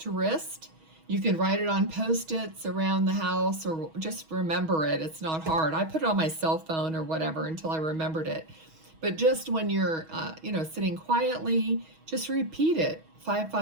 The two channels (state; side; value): late; left; 6.3 ms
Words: wrist. You can write it on Post-its around the house, or just remember it. It's not hard. I put it on my cell phone or whatever until I remembered it. But just when you're, sitting quietly, just repeat it.